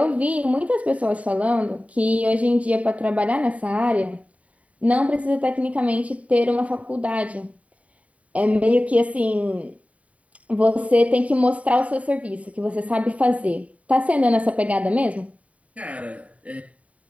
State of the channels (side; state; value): left; late; 0.067 ms